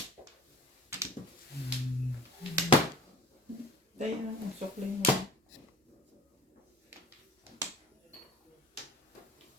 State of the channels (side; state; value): both; normal; correlation 0.45